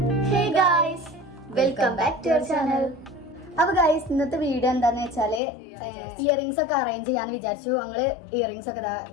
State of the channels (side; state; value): right; drops out; at 5.4 s